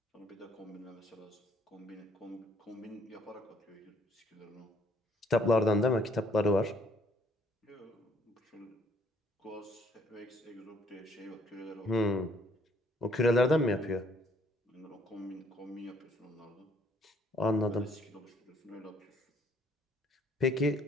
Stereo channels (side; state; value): both; normal; correlation 0.64